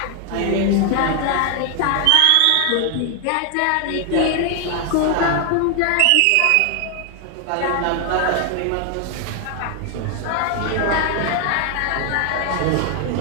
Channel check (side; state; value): both; different; correlation 0.00